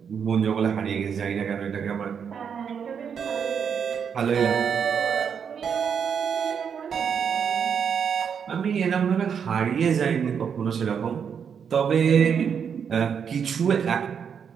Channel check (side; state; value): left; quieter; 7.2 dB